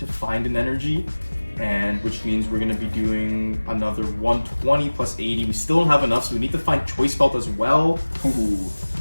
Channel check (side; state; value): both; inverted; correlation -1.00